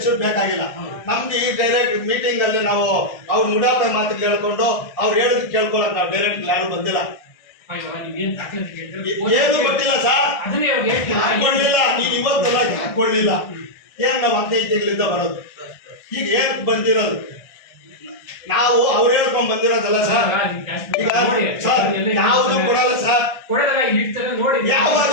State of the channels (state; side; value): late; right; 1.6 ms